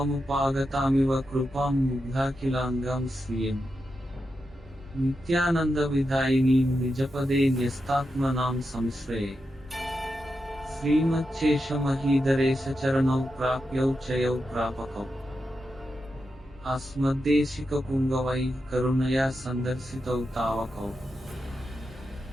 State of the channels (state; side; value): normal; both; correlation 0.88